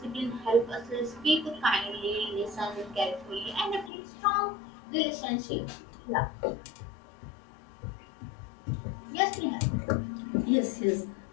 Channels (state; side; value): drops out; right; at 3.9 s